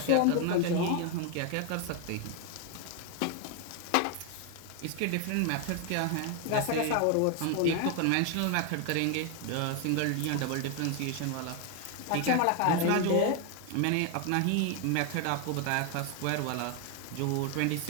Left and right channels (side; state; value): both; different; correlation 0.00